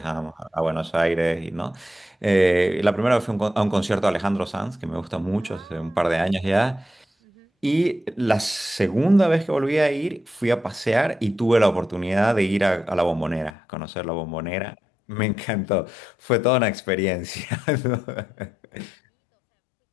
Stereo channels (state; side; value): drops out; right; at 13.6 s